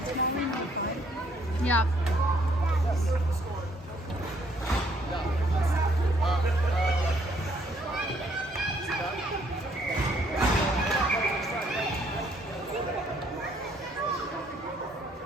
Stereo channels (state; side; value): normal; both; correlation 0.66